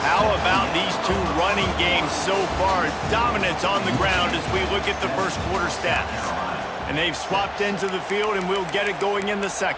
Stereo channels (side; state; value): both; identical; correlation 1.00